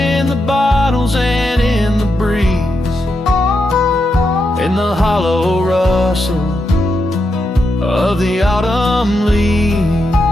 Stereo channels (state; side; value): normal; both; correlation 0.84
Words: the bottles and in the breeze, in the hollow rustle of the autumn leaves.